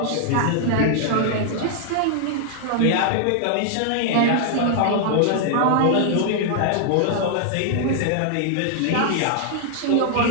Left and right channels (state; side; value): different; both; correlation 0.00